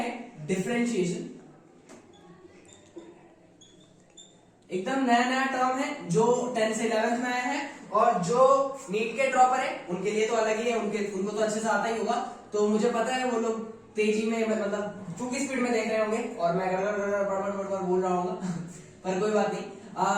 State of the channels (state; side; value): identical; both; correlation 1.00